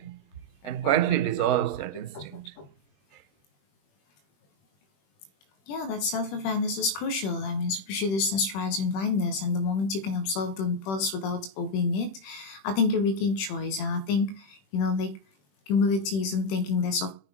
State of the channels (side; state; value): right; late; 21 ms